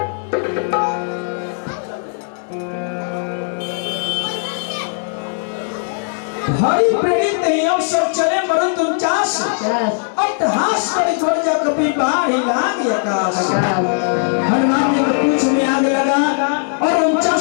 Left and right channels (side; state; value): right; silent; 66 dB below the other